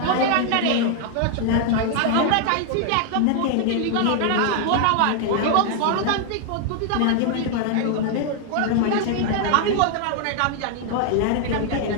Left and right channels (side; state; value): both; different; correlation 0.00